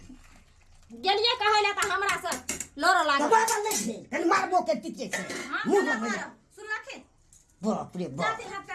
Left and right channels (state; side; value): identical; both; correlation 1.00